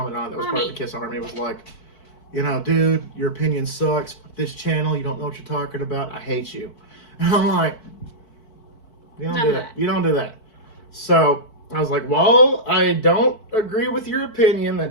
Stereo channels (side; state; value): right; late; 4.6 ms